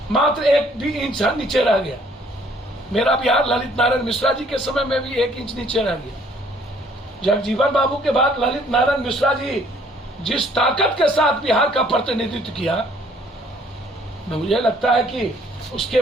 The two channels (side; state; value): both; normal; correlation 0.61